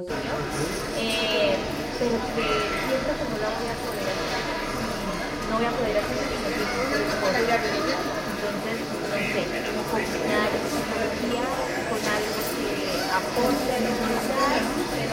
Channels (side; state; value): both; identical; correlation 1.00